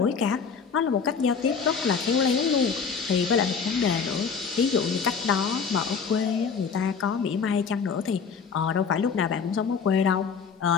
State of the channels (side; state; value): right; quieter; 6.0 dB